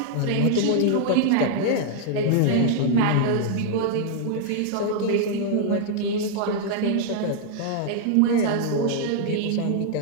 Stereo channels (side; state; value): both; different; correlation -0.01